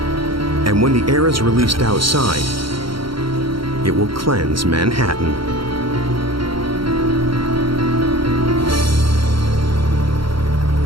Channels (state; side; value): late; left; 0.73 ms